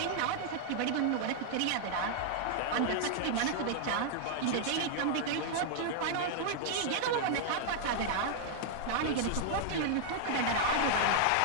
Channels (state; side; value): different; both; correlation -0.01